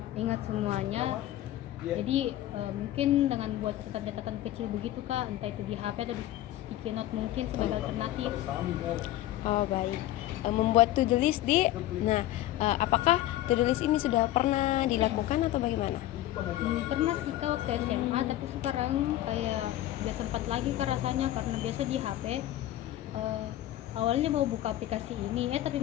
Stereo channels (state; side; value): quieter; right; 14.4 dB